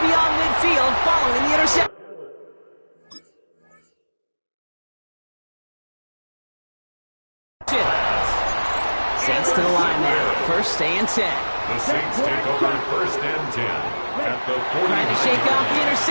midfield following the interception. Saints to the line now. 1st and 10. The Saints take over 1st and 10. At the 40. Trying to shake off the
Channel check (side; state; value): both; inverted; correlation -1.00